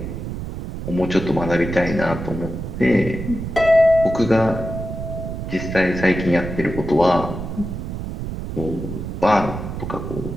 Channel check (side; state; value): right; noise; rumble, 7 dB below the sound